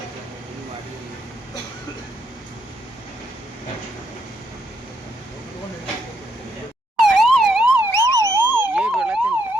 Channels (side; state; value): both; normal; correlation 0.75